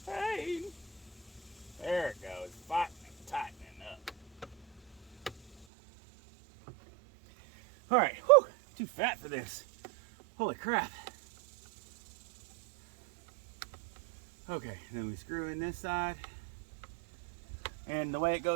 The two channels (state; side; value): drops out; left; at 5.7 s